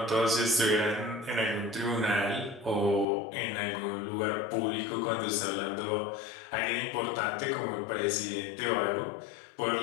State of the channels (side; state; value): right; drops out; at 3.1 s